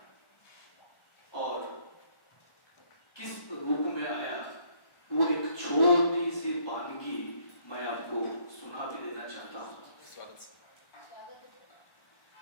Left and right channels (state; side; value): late; right; 1.2 ms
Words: और किस रूप में आया वो एक छोटी सी वानगी मैं आपको सुना भी देना चाहता हूँ।